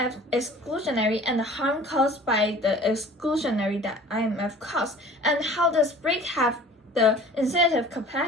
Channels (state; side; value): normal; both; correlation 0.46